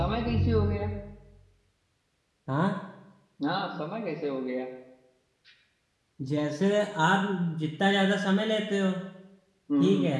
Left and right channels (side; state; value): both; identical; correlation 1.00